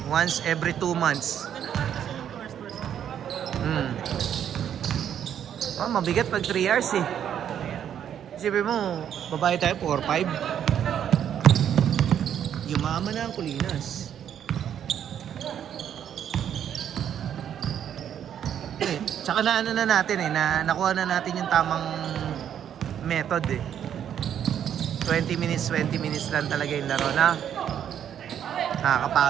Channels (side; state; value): left; quieter; 9.4 dB